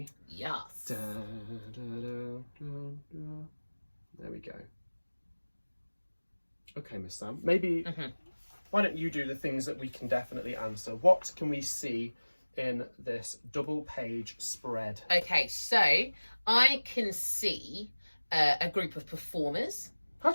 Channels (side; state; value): both; inverted; correlation -1.00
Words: Yes. Da, da, da, da, da. There we go. Okay, Miss Sam, maybe why don't you do the things that we can definitely answer? What can we see in this double page spread? Okay, so I can see a group of performers. How